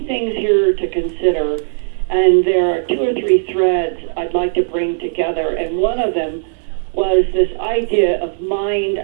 things here to consider, and there are 2 or 3 threads I'd like to bring together, and one of them was this idea of mind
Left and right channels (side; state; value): left; silent; digital silence